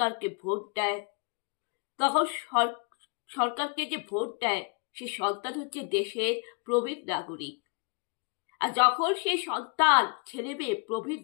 ভোট দেয়। তখন সরকারকে যে ভোট দেয় সে সন্তান হচ্ছে দেশের প্রবীণ নাগরিক। আর যখন সেই সন্তান ছেলে মেয়ে প্রবীণ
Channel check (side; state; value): right; quieter; 36.2 dB